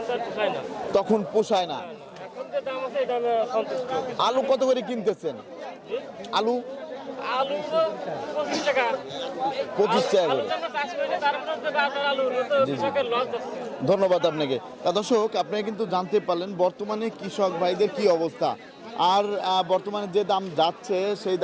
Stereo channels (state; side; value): identical; both; correlation 1.00